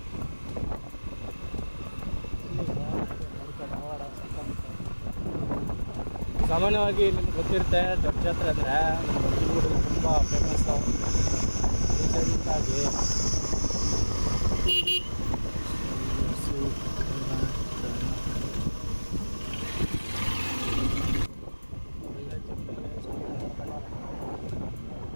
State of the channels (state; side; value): inverted; both; correlation -1.00